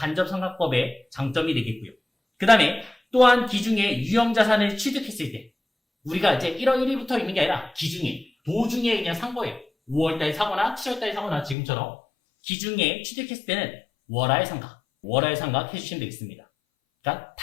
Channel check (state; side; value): drops out; right; at 11.6 s